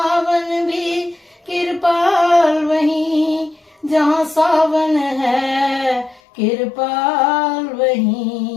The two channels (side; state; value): right; drops out; at 6.2 s